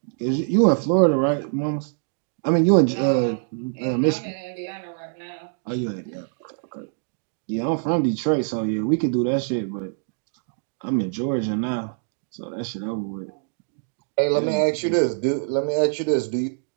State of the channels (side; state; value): left; silent; digital silence